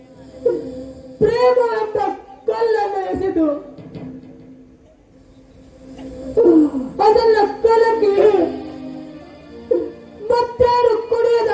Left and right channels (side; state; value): both; identical; correlation 1.00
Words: ಪ್ರೇಮ ಎಂಬ ಕಲ್ಲನ್ನು ಎಸೆದು ಅದನ್ನ ಕಲಕಿ ಮತ್ತೇನು ಕುಡಿಯದ